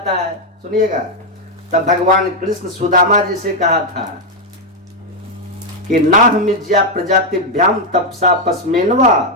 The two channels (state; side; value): normal; both; correlation 0.02